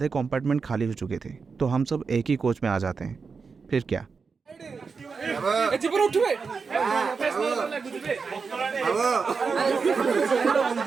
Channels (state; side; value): quieter; left; 5.1 dB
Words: कंपार्टमेंट खाली हो चुके थे तो हम सब एक ही कोच में आ जाते हैं। फिर क्या,